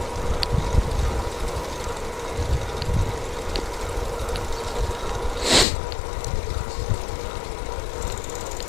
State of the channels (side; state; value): right; drops out; at 5.7 s